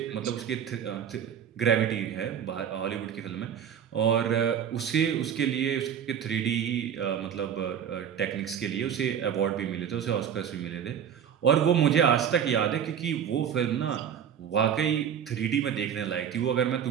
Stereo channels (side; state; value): left; quieter; 8.6 dB